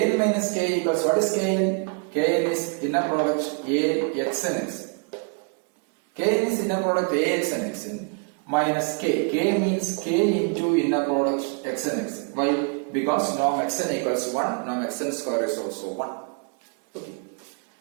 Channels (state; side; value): quieter; left; 37.3 dB